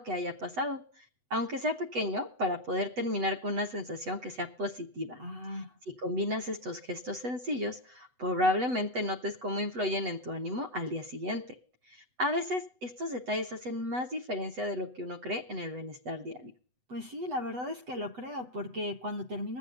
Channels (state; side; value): late; left; 8.0 ms